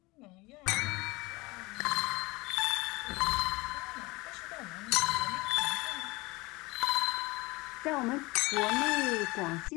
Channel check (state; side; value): quieter; right; 23.1 dB